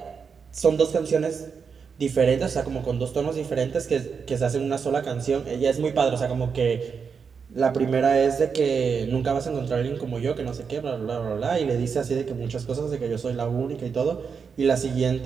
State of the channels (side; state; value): left; quieter; 6.0 dB